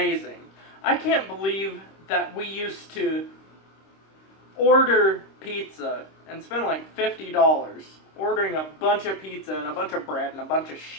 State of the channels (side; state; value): right; late; 26 ms